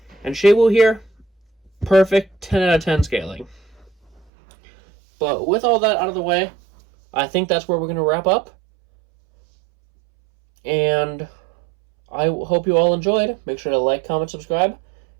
And Shawu here, perfect 10 out of 10 scaling. But with all that out of the way, I think that's where we're going to wrap up. And I hope you all enjoyed. Make sure to like, comment, subscribe.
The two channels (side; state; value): left; drops out; at 4.2 s